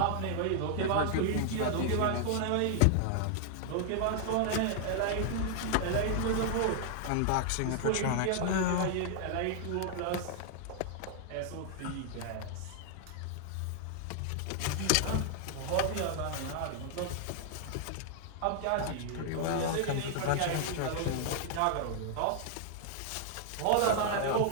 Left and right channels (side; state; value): both; different; correlation 0.00